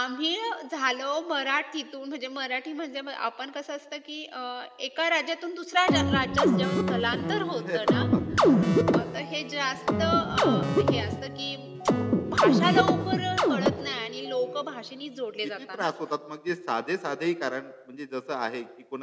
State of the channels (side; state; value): both; identical; correlation 1.00